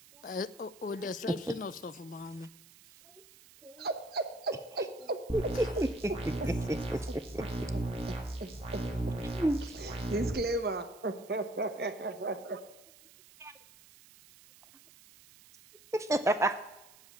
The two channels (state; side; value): noise; right; hiss, 23 dB below the sound